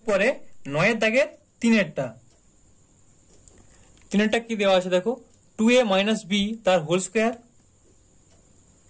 পরে 9 দাগের 3 কি দেওয়া আছে দেখো, 2a মাইনাস b তার whole square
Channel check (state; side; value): identical; both; correlation 1.00